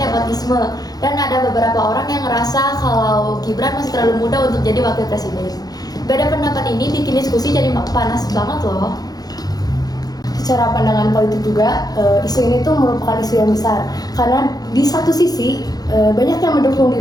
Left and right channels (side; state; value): right; late; 0.19 ms